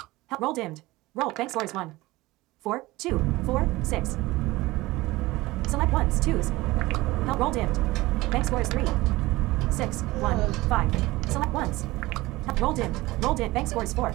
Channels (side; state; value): left; quieter; 19.6 dB